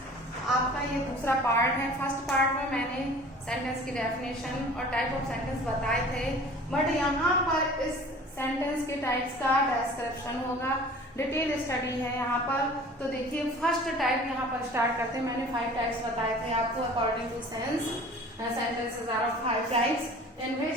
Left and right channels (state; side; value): normal; both; correlation 0.45